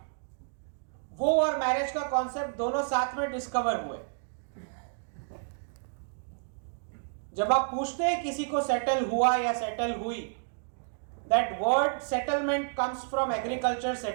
वो और मैरिज का कॉन्सेप्ट दोनों साथ में डिस्कवर हुए। जब आप पूछते हैं किसी को सेटल हुआ या सेटल हुई, that word settlement comes from agriculture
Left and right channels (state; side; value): silent; left; digital silence